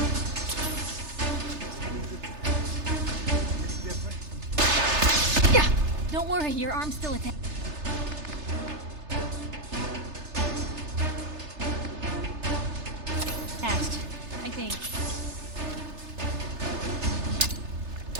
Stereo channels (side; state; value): left; late; 3.3 ms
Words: Don't worry, your arm's still attached. I think.